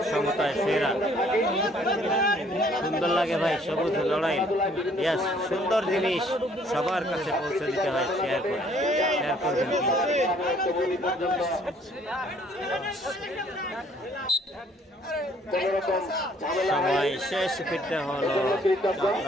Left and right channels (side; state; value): both; normal; correlation 0.61